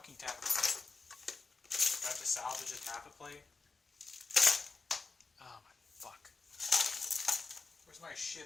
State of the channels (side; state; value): right; quieter; 4.2 dB